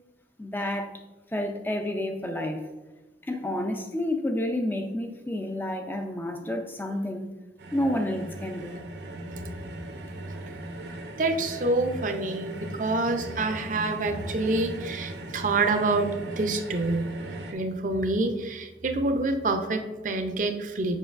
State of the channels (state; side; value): normal; both; correlation 0.44